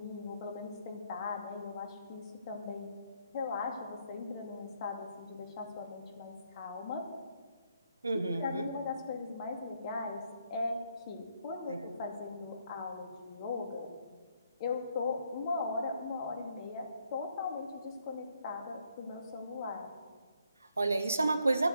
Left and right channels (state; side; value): inverted; both; correlation -0.73